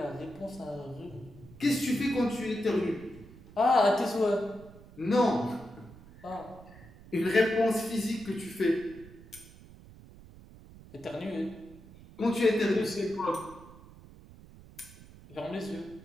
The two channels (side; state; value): right; noise; rumble, 20 dB below the sound